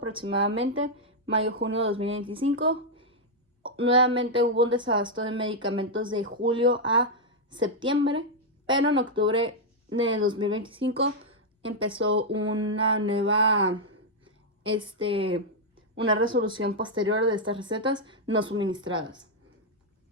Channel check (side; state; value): both; normal; correlation -0.02